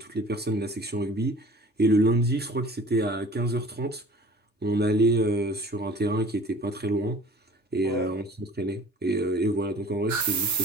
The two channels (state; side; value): normal; both; correlation 0.47